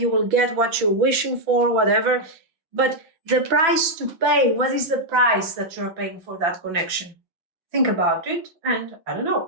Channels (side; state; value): left; late; 6.0 ms